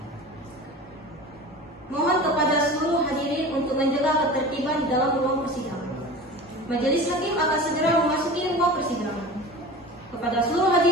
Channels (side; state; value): both; normal; correlation 0.35